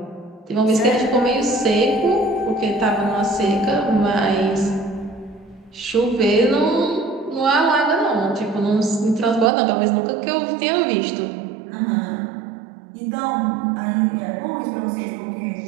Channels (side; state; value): left; drops out; at 9.5 s